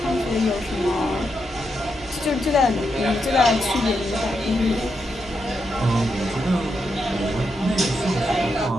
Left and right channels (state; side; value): normal; both; correlation 0.83